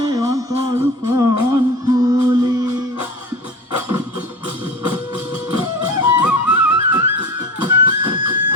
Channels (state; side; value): normal; both; correlation 0.32